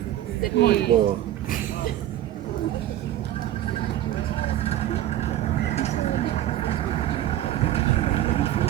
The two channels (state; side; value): quieter; left; 12.7 dB